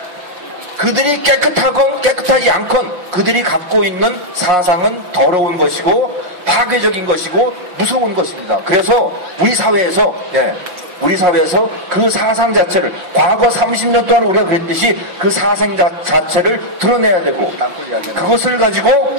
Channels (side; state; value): left; late; 6.0 ms